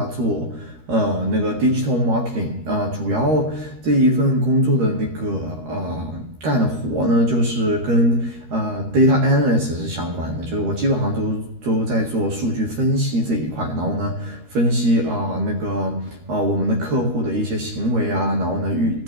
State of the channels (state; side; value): late; left; 13 ms